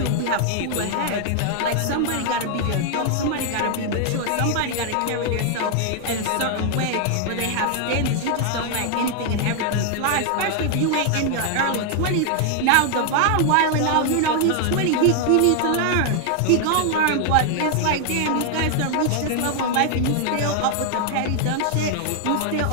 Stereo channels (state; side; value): different; both; correlation 0.00